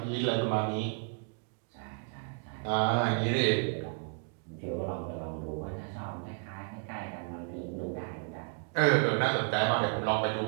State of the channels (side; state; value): left; quieter; 39.9 dB